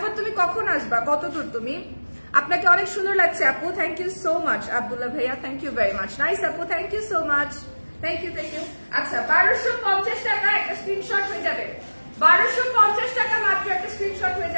তুমি কখন আসবা, কত দূর তুমি? আপনাকে অনেক সুন্দর লাগছে আপু, thank you so much. Abdullah ভাইয়া, thank you very much. Nice আপু, thank you so much, thank you thank you. আচ্ছা, 1250 টাকা একটা স্ক্রিনশট হয়ে যাবে, 1250 টাকা মাত্র একটা স্ক্রিনশট হয়ে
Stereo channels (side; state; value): both; inverted; correlation -1.00